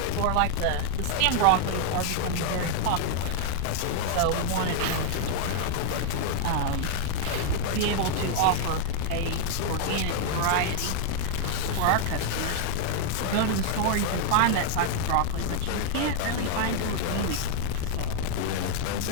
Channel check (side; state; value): both; different; correlation 0.00